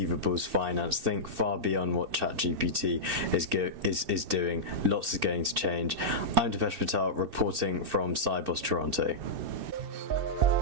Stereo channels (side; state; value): left; late; 2.6 ms